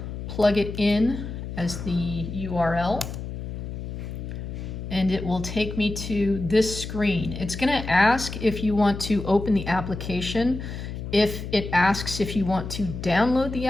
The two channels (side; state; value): left; noise; hum, 7 dB below the sound